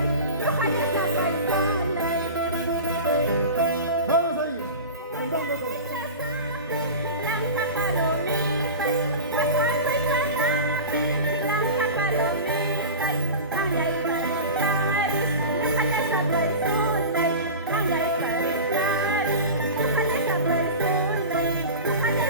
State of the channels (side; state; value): both; inverted; correlation -0.31